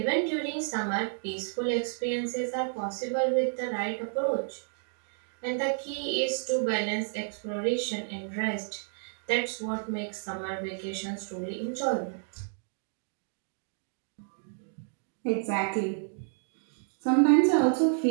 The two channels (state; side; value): silent; left; digital silence